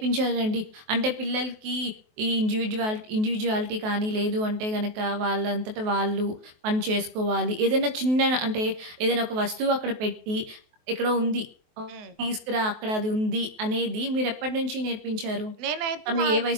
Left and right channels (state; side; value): late; left; 23 ms